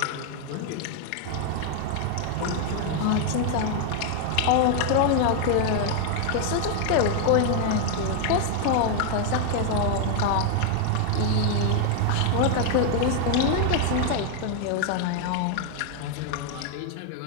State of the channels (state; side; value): different; both; correlation 0.01